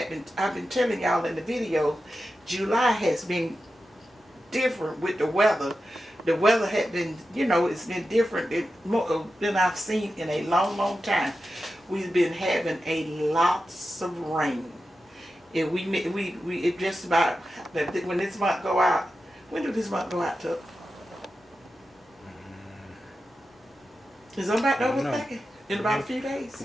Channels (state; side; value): normal; both; correlation 0.91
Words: been telling y'all in the video, July has been different with the weather. The weather had been, you know, it's been different than I've seen in a long, long time. We've been having a lots of rain. And it just about, when this month go out, when did this month go out, Tuck? Is it about over thinking? In about a few days?